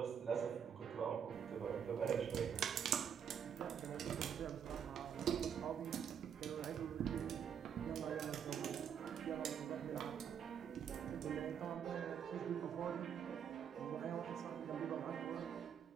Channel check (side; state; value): left; quieter; 8.0 dB